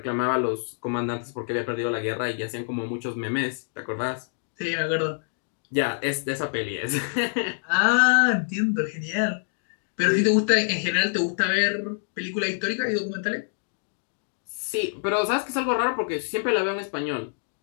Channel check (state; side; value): silent; right; digital silence